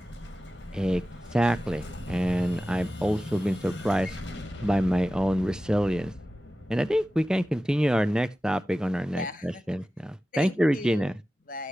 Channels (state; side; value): normal; both; correlation 0.95